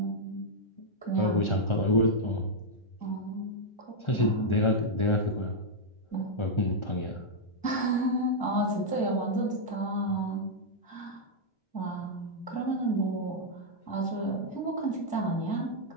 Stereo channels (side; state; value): right; late; 1.4 ms